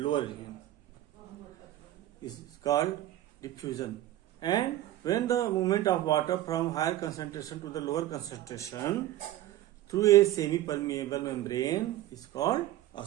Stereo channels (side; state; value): left; quieter; 14.2 dB